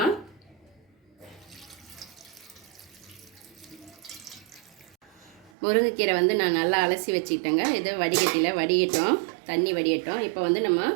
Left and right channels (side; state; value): left; drops out; at 5.5 s